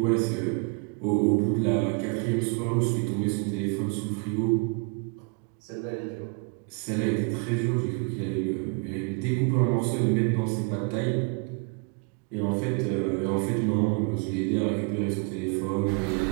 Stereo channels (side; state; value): left; quieter; 33.6 dB